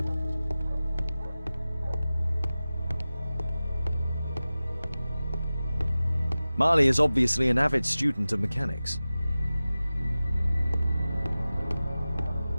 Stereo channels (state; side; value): inverted; both; correlation -0.96